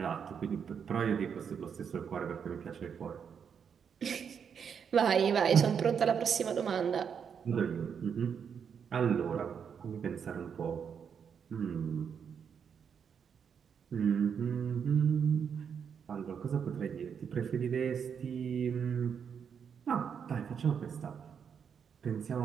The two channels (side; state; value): left; quieter; 7.2 dB